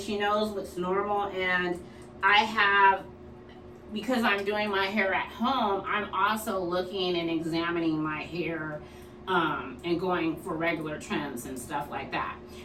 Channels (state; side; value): identical; both; correlation 1.00